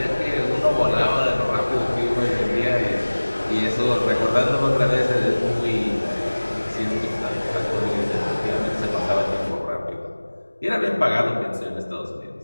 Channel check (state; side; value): inverted; both; correlation -1.00